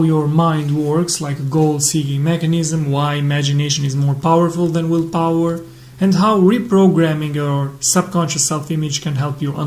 your mind works like a goal-seeking mechanism, why imagination is more powerful than willpower, and how reprogramming your subconscious self-image can help you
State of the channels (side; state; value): both; identical; correlation 1.00